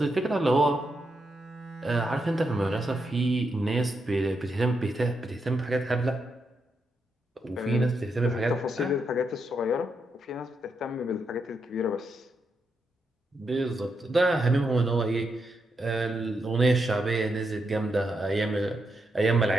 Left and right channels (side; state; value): both; normal; correlation 0.82